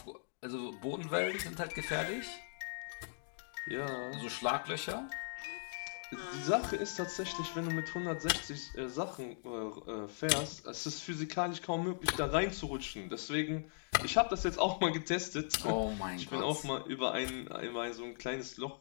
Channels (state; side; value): silent; right; digital silence